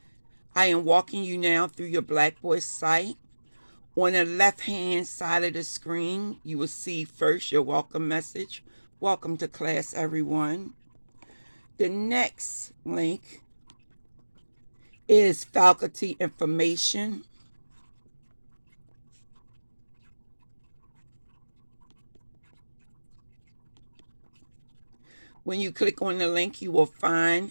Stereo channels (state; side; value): inverted; both; correlation -1.00